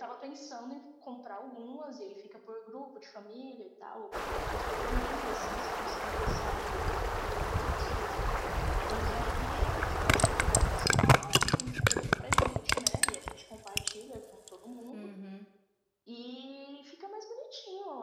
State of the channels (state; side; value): identical; both; correlation 1.00